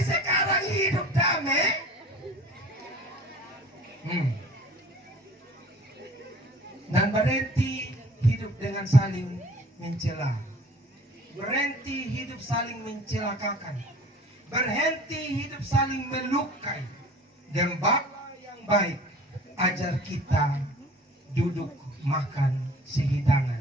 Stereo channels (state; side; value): normal; both; correlation 0.47